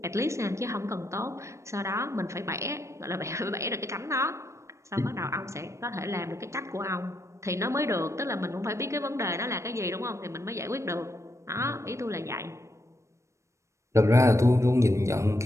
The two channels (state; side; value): late; left; 0.14 ms